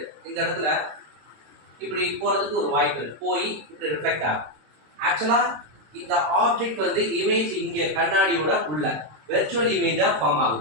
இந்த இடத்துல இப்படி போகிறதுக்கு ஒரு வாய்ப்பு இருக்குது. போய் இப்படி ரிஃப்ளெக்ட் ஆகும். ஆக்சுவலாக இந்த ஆப்ஜெக்ட் வந்து இமேஜ் இங்கே கண்ணாடியோட உள்ள வெர்ச்சுவல் இமேஜாக ஃபார்ம்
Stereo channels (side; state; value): left; late; 26 ms